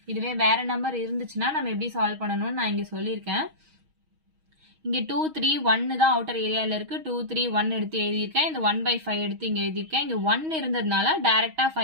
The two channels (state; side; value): late; left; 6.3 ms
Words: இதுவே வேற நம்பர் இருந்துச்சுன்னா நம்ம எப்படி சால்வ் பண்ணணும்னு நான் இங்க சொல்லியிருக்கேன். இங்க 2 3 1 தான் அவுட்டர் ஏரியால இருக்கு. 2 3 1 எடுத்து எழுதியிருக்கேன். இந்த 1/5 எடுத்து இங்க எழுதியிருக்கேன். இங்க 1 இருந்ததுனால டைரக்டா